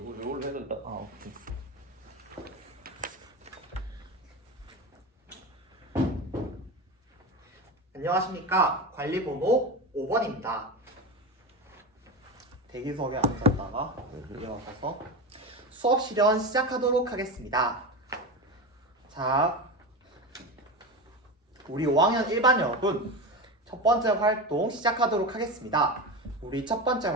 해야 된다. 아 오케이. 안녕하십니까. 관리번호 5번입니다. 대기석에 앉았다가 일어서서 수업 실현 시작하도록 하겠습니다. 자, 우리 5학년 1반 여러분, 첫 번째 활동 시작하도록 하겠습니다. 우리 첫 번째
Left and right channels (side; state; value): both; normal; correlation 0.22